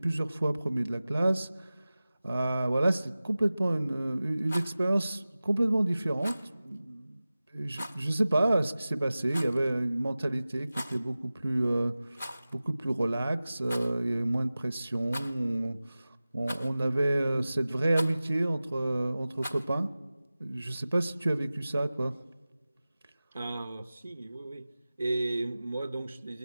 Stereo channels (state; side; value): inverted; both; correlation -0.97